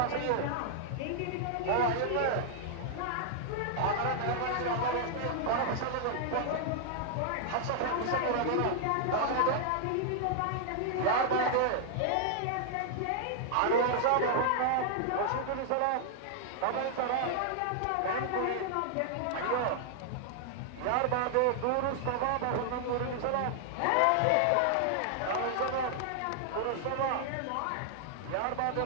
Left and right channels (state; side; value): different; both; correlation -0.01